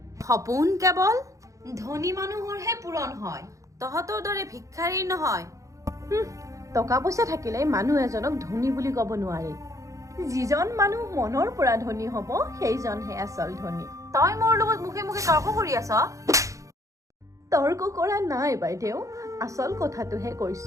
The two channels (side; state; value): left; late; 0.15 ms